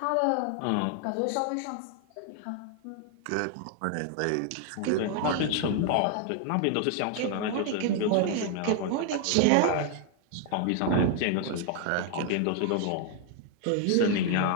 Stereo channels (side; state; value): both; different; correlation 0.00